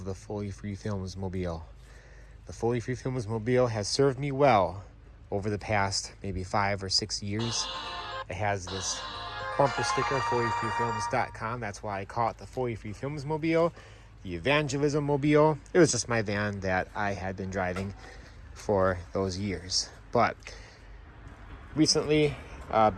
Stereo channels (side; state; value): both; identical; correlation 1.00